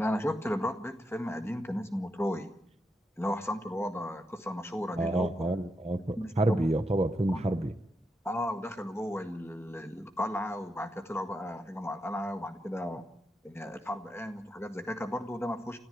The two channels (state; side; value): normal; both; correlation 0.84